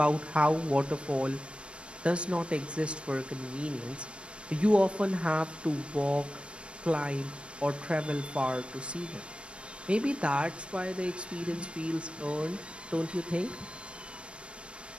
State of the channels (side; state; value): left; late; 0.059 ms